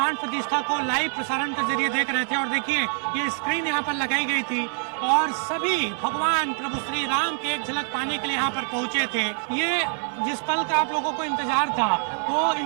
प्रतिष्ठा को लाइव प्रसारण के जरिए देख रहे थे। और देखिए, ये स्क्रीन यहाँ पर लगाई गई थी और सभी भगवान प्रभु श्री राम की एक झलक पाने के लिए यहाँ पर पहुंचे थे। ये जिस पल का आप लोगों को इंतजार था, वो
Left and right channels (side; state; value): left; silent; 62 dB below the other